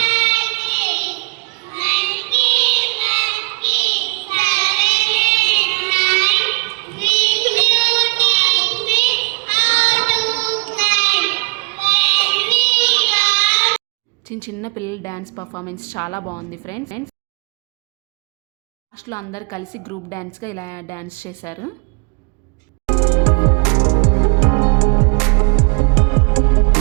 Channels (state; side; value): quieter; left; 33.8 dB